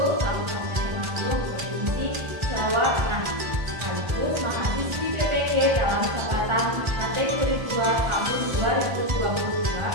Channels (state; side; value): late; left; 1.4 ms